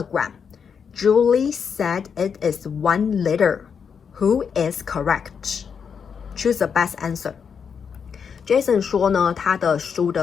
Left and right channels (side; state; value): right; quieter; 6.7 dB